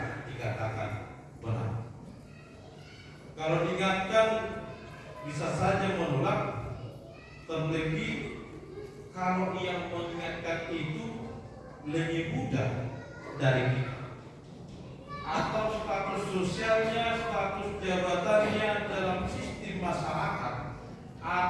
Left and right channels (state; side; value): identical; both; correlation 1.00